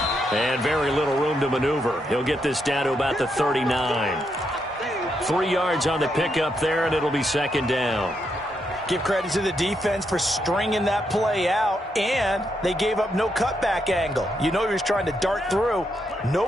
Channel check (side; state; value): both; normal; correlation 0.80